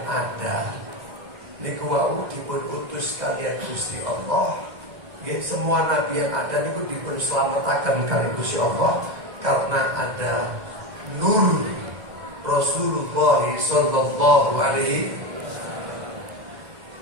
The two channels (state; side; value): late; left; 2.0 ms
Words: ada niku wau dipun utus kalian Gusti Allah. Nggih, semua nabi yang ada niku dipun slametaken kalian Gusti Allah karena ada nur Rasulullah sallallahu alaihi.